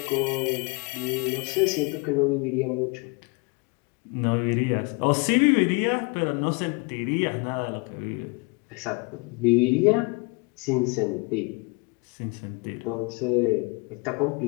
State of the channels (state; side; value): quieter; right; 29.3 dB